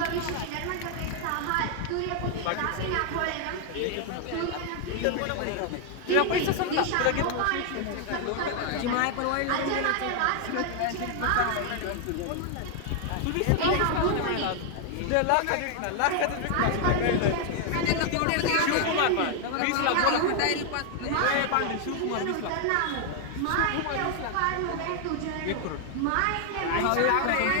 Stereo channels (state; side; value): different; both; correlation 0.00